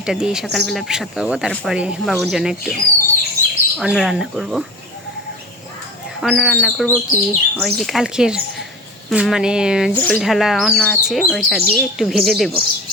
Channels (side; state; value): both; normal; correlation 0.33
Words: দিয়ে সকালবেলা প্রসাদ পাবো। তারপরে বাবুর জন্য একটু অন্ন রান্না করব। কি ওই যে কালকের মানে জল ঢালা অন্ন আছে, ওইটা দিয়ে একটু ভেজে দেব।